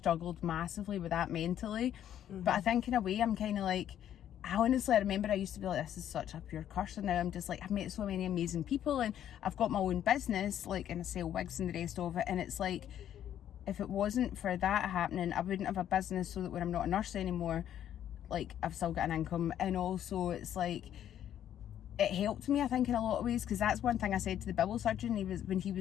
massively with that mentally. But I think in a way, I'm kind of like, I remember I used to be like, this is such a pure curse, and now I'm just like, I've met so many amazing people, and I've got my own business, like, and I sell wigs and the rest of it, and it's like, if it wasn't for that happening, I wouldn't have a business, so that when I'm not a nurse anymore, like, I've still got an income. And also it's like, it helped me, I think, in a lot of ways, because that's one thing I said to the bowel surgeon. When he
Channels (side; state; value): right; quieter; 10.6 dB